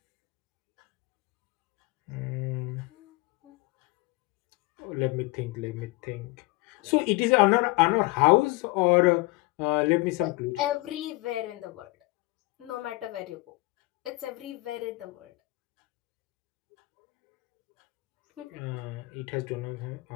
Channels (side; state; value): right; quieter; 22.4 dB